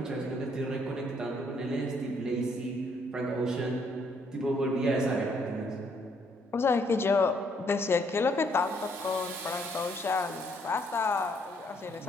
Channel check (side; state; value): both; normal; correlation 0.69